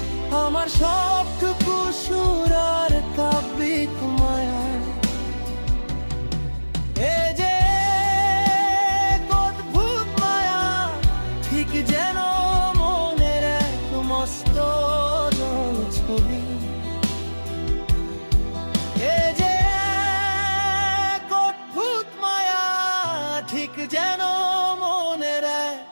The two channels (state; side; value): inverted; both; correlation -1.00